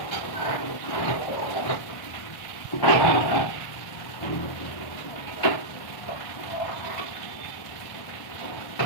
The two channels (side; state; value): right; late; 1.4 ms